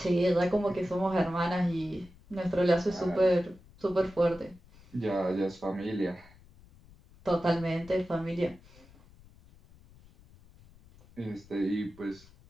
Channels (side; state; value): left; noise; rumble, 25 dB below the sound